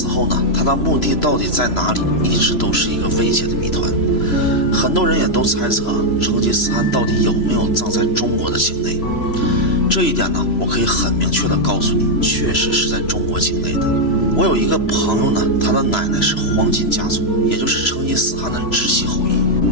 后呢，他的墓地到底在哪里，一直都是一个未解的谜团。很多人也都猜测成吉思汗到底有没有葬在中国的境内。这一点呢，我可以很明确的告诉你，确实是在中国境内的。我有一个朋友呢，他的奶奶是黄金家族，也就是成吉思汗的直系后裔。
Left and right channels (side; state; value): right; late; 3.0 ms